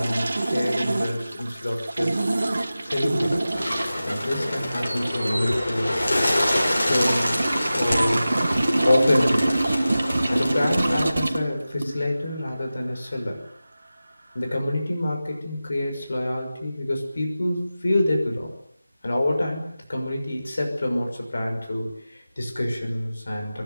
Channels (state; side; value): inverted; both; correlation -0.95